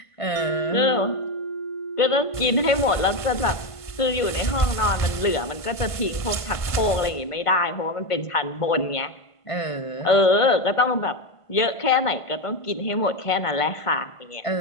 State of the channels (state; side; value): late; right; 1.5 ms